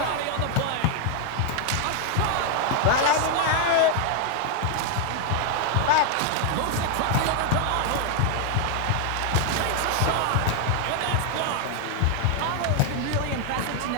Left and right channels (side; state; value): both; different; correlation 0.00